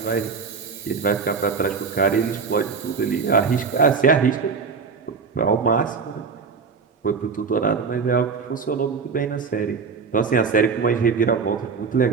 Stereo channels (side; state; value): left; quieter; 5.4 dB